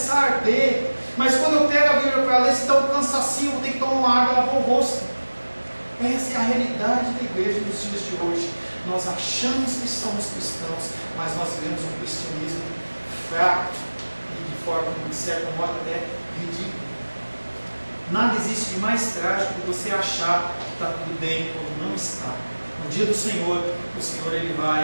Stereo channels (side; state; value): both; inverted; correlation -1.00